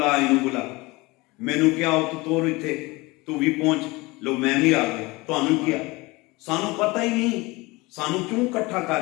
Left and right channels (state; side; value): quieter; right; 23.0 dB